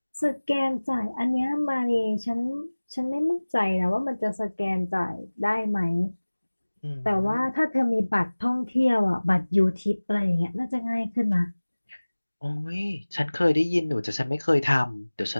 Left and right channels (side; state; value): both; inverted; correlation -1.00